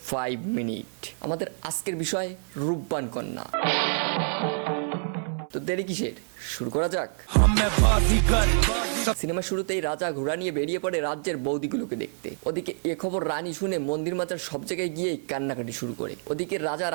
5 মিনিট। আমাদের আজকের বিষয় রূপবান কন্যা। তো দেরি কিসের, শুরু করা যাক। সিনেমা শুরুতেই রাজা ঘোড়া নিয়ে বেরিয়ে পড়ে রাজ্যের বৌদিগুলোকে দেখতে। ওদিকে এ খবর রানী শুনে মন্দির মাজার সব জায়গায় গিয়েই কান্নাকাটি শুরু করে। ওদিকে রাজা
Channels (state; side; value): silent; left; 60 dB below the other